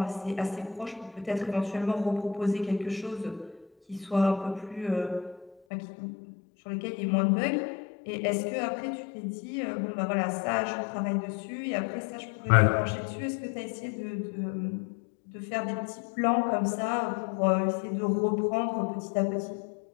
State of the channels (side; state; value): right; drops out; at 5.6 s